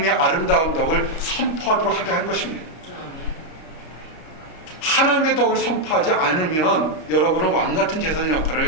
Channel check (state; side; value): late; right; 32 ms